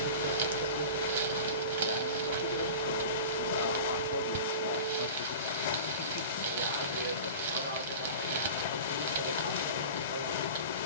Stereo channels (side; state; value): both; inverted; correlation -0.35